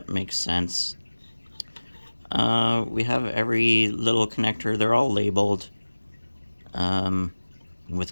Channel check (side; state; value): both; inverted; correlation -1.00